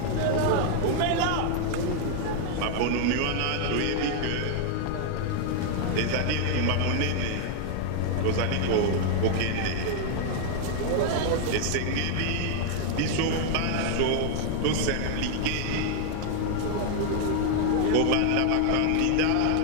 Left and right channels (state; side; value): different; both; correlation 0.00